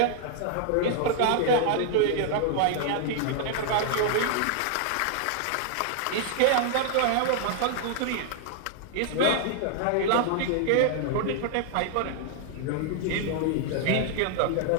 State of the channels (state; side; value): different; both; correlation -0.01